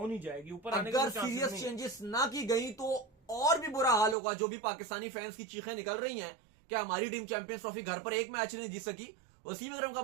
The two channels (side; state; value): left; drops out; at 4.2 s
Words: ही जाएगी, ऊपर आने अगर का सीरियस चेंजेस ना की गई तो और भी बुरा हाल होगा। जो भी पाकिस्तानी फैंस की चीखें निकल रही हैं कि हमारी टीम चैंपियंस ट्रॉफी घर पर एक मैच नहीं जीत सकी, वसीम अकरम का